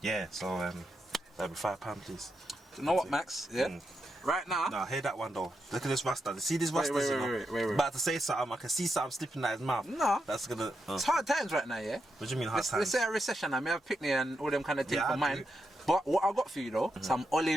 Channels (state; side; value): normal; both; correlation 0.85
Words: yeah, so that'll be £5, please. You know what, Max? Yeah. Right now. Nah, hear that one though. Look at this Rasta. See this Rasta? Wait. About to say something. I can see something slipping out his mouth. No. That's gonna. It's hard times right now, yeah. What do you mean hard times? Let's say a recession. I may have picnic and all them kind of things Yeah, for I mine. do. But what I got for you though, some